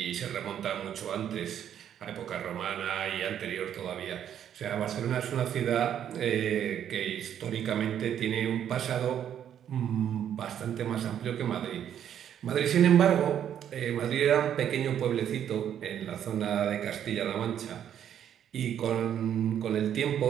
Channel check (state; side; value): quieter; left; 9.7 dB